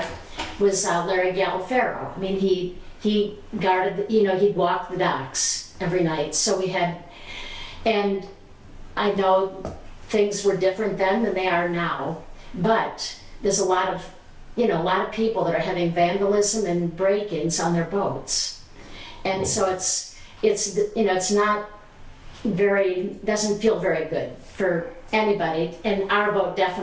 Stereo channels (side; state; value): both; identical; correlation 1.00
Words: was Larry Galafero. He guarded, he'd walk the docks every night. So we had, and I know things were different then than they are now, but there's a lot of people that are having vandalism and break-ins on their boats. And so it's not doesn't feel very good for anybody, and our boat